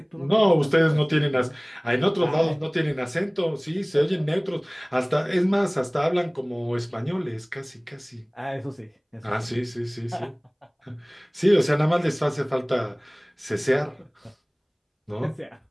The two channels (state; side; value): identical; both; correlation 1.00